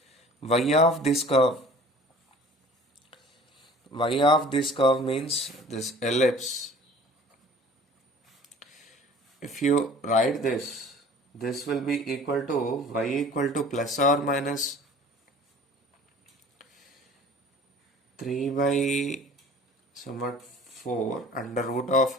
y of this curve. Y of this curve means this ellipse. If you write this, this will be equal to y equal to plus or minus 3 by somewhat 4 under root of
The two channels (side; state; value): both; normal; correlation 0.47